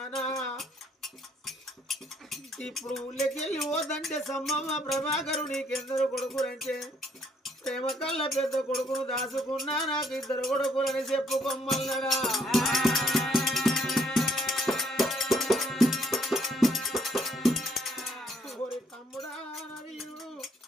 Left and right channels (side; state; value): both; normal; correlation 0.66